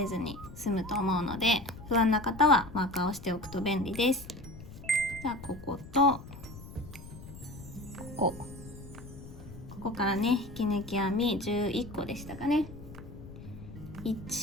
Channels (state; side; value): noise; left; rumble, 14 dB below the sound